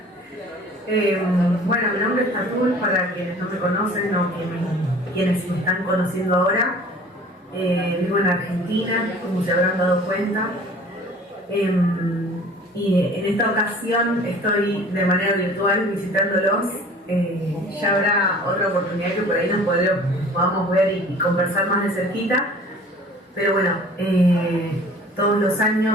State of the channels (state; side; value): normal; both; correlation 0.47